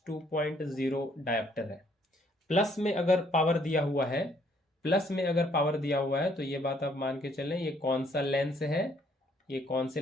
डायप्टर है। प्लस में अगर पावर दिया हुआ है, प्लस में अगर पावर दिया हुआ है तो ये बात आप मान के चलें, ये कौन सा लेंस है? ये कौन से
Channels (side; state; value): both; normal; correlation 0.66